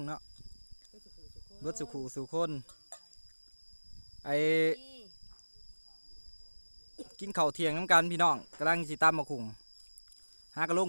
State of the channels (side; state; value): both; inverted; correlation -1.00